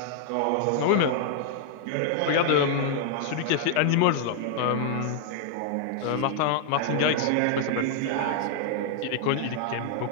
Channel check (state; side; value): different; both; correlation 0.00